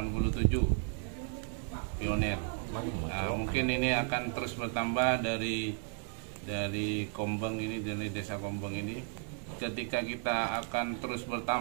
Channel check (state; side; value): silent; left; 55 dB below the other